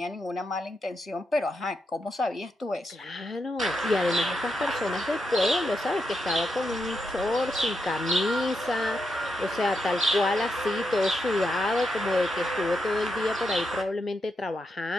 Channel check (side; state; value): both; normal; correlation 0.84